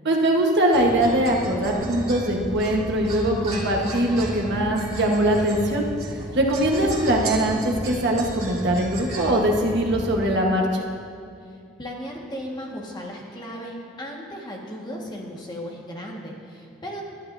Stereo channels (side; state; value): both; normal; correlation 0.39